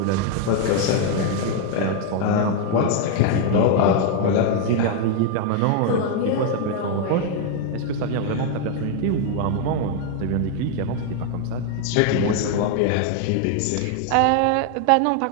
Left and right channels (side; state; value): both; different; correlation 0.00